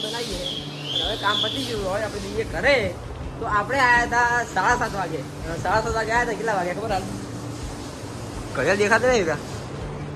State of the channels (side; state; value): both; identical; correlation 1.00